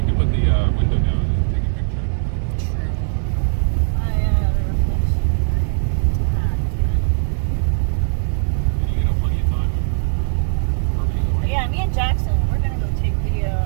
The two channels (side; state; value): left; silent; digital silence